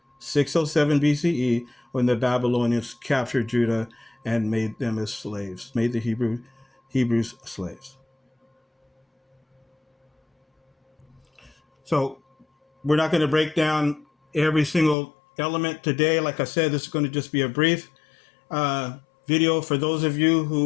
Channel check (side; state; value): right; drops out; at 15.0 s